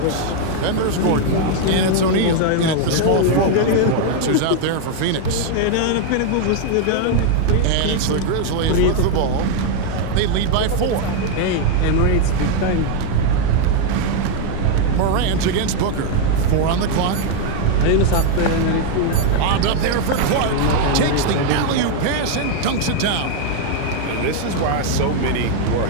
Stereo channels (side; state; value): both; different; correlation 0.00